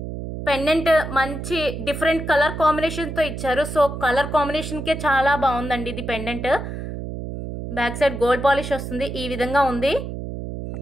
పెండెంట్ మంచి డిఫరెంట్ కలర్ కాంబినేషన్తో ఇచ్చారు, సో కలర్ కాంబినేషన్కే చాలా బాగుందండి ఇది pendant. Back side gold polish వస్తుంది, ఈ విధంగా ఉంది,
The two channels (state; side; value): noise; right; hum, 7 dB below the sound